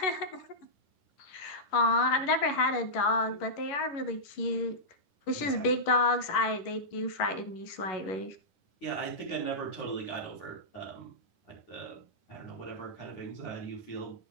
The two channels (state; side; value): late; right; 11 ms